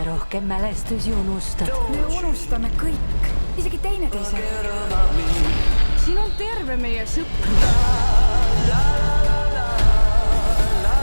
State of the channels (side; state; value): both; inverted; correlation -1.00